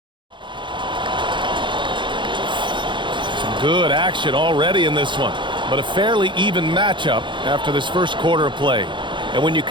Good action already in this one, but a fairly even matchup after this first quarter of play. And when you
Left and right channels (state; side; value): late; left; 0.23 ms